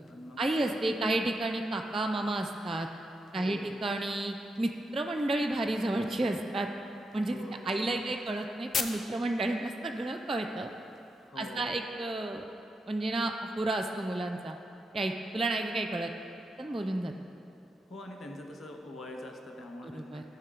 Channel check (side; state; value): both; normal; correlation 0.85